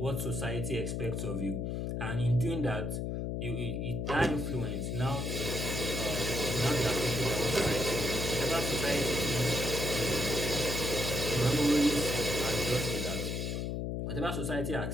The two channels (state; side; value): noise; left; hum, 2 dB below the sound